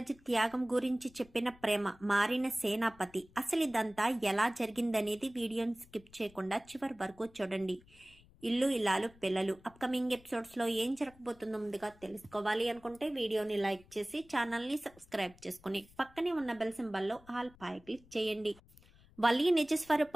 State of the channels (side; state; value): left; noise; rumble, 26 dB below the sound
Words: త్యాగం గురించి చెప్పిన ప్రేమ మారిన సేనాపతి. అసలు ఇదంతా ఎలా జరిగిందనేది వీడియోని స్కిప్ చేయకుండా చివరి వరకు చూడండి. ఇల్లు ఇల్లాలు పిల్లలు అప్కమింగ్ ఎపిసోడ్స్ లో ఏం జరగబోతుందో ముందుగా తెలుసుకోవాలి అనుకుంటే వీడియోని లైక్ చేసి ఛానల్ ని సబ్స్క్రైబ్ చేసుకుని పక్కనే ఉన్న బెల్ సింబల్ లో ఆల్ పై క్లిక్ చేయండి. వల్లి